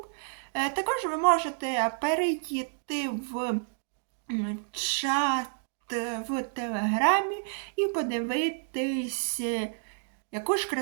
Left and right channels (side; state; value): left; silent; digital silence